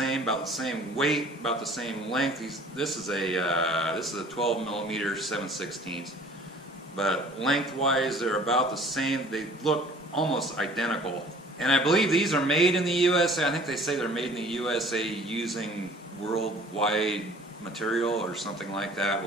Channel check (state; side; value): normal; both; correlation 0.50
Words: weight, about the same length. This is a 12 millimeter 7/16, but lengthwise they're about the same. They look almost identical. And I believe these are made in the USA. I think they say they're made in the USA using worldwide material or something like that,